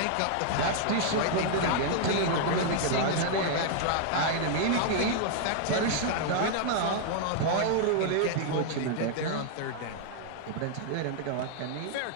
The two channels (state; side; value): different; both; correlation -0.01